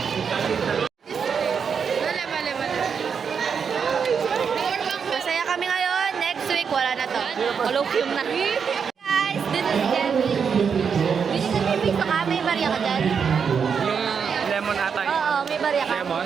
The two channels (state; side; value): quieter; left; 6.5 dB